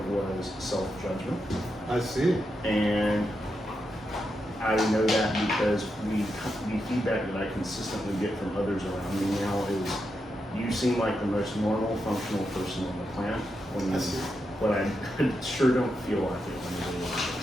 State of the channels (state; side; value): normal; both; correlation 0.85